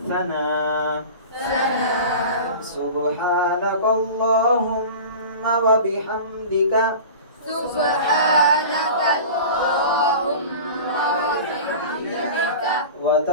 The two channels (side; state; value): both; inverted; correlation -0.36